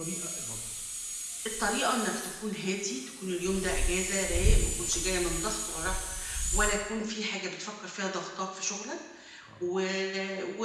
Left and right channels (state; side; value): identical; both; correlation 1.00